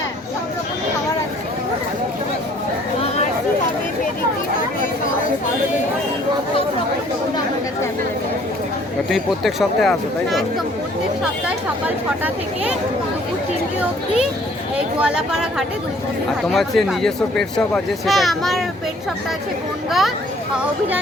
সব রকম খাবার আছে। আরসি হবে, পেডিগ্রি হবে, সব রকম ফুড আমার কাছে available। তুমি প্রত্যেক সপ্তাহে আসো, তাই তো? একদম প্রত্যেক সপ্তাহে সকাল 6টা থেকে দুপুর 3টে অবধি এই গোয়ালাপাড়া ঘাটে দুই বন্ধুর আর হাটে তোমার যে আমাকে নিজস্ব পেট শপ আছে পাবেন। সেটা হ্যাঁ, একটু- আমার পেট শপটা আছে বনগা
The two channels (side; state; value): both; normal; correlation 0.58